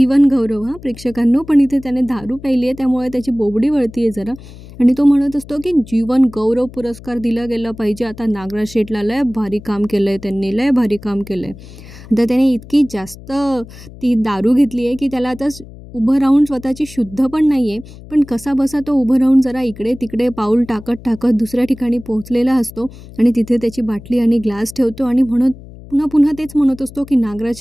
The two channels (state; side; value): noise; left; hum, 18 dB below the sound